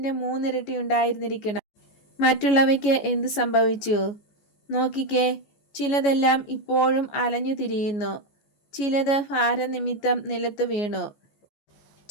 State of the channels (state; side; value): late; right; 14 ms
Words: 3 ഇരട്ടി ഉണ്ടായിരുന്നിരിക്കണം. മറ്റുള്ളവയ്ക്ക് എന്ത് സംഭവിച്ചു? നോക്കിക്കേ, ചിലതെല്ലാം ഇപ്പോഴും അലഞ്ഞു തിരിയുന്നു. ചിലത് ഭാരനിമിത്തം നിലത്ത് വീണു.